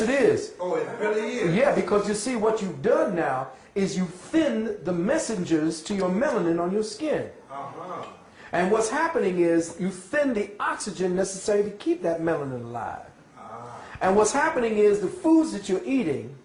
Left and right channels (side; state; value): both; identical; correlation 1.00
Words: it is. Oh, it really is? Yeah, because you see, what you've done now is you thin the messengers to your melanin on your skin. And what's happening is you thin the oxygen necessary to keep that melanin alive. And what's happening is the foods that you're eating